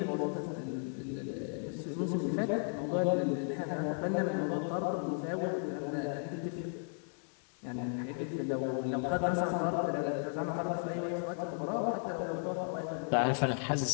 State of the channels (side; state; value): right; silent; 55 dB below the other